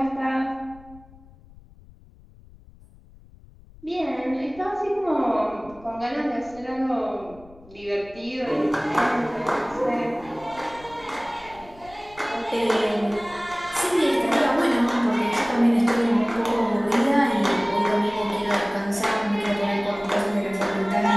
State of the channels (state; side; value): noise; left; rumble, 23 dB below the sound